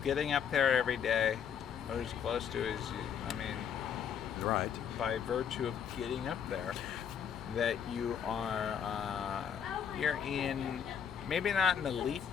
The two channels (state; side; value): quieter; right; 8.0 dB